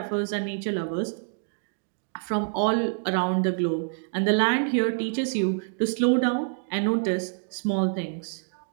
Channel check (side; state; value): left; silent; digital silence